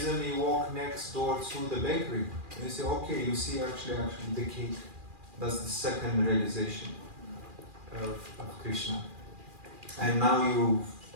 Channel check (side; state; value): left; late; 2.4 ms